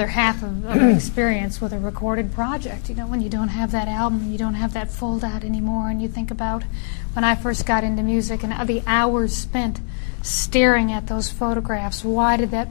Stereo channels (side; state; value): right; silent; 62 dB below the other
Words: half of an experience with a recorded project. When you don't have that album, you don't have that fold out anymore, and you think about when I first got into music and the hours spent staring at those photographs. Why did